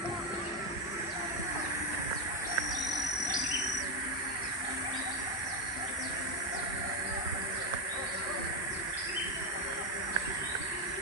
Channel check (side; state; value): both; normal; correlation 0.07